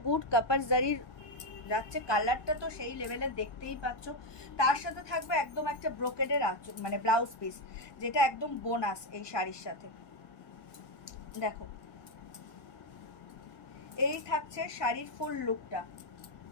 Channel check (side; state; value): right; late; 1.2 ms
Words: গুড, কপার জারির যাচ্ছে, কালারটা তো সেই লেভেলের, দেখতেই পাচ্ছ। তার সাথে থাকবে একদম একটা ব্রোকেডের আঁচল, মানে ব্লাউজ পিস, যেটা একদম বোনাস এই শাড়ির সাথে। দেখো, এই থাকছে শাড়ির ফুল লুকটা,